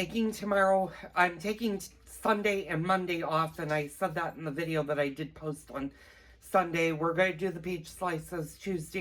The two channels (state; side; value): identical; both; correlation 1.00